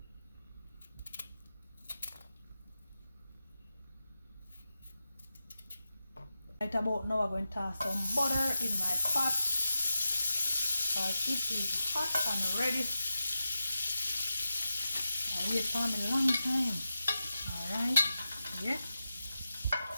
Right about now, I'm going to toss some butter in my pot because it is hot and ready. I wait for me a long time. Alright, yeah.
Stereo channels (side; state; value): both; inverted; correlation -0.90